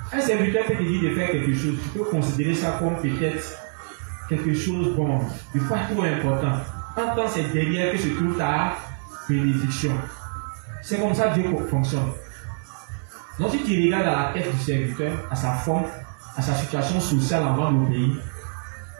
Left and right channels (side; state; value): left; silent; 62 dB below the other